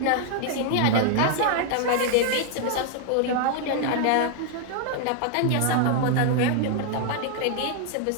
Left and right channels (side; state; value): both; different; correlation 0.00